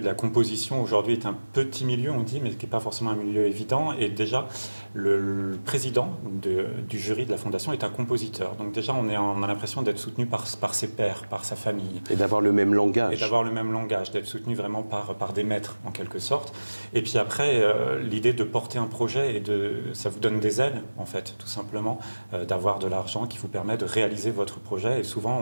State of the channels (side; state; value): both; inverted; correlation -1.00